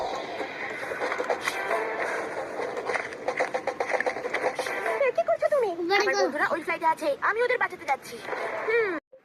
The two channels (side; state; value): both; identical; correlation 1.00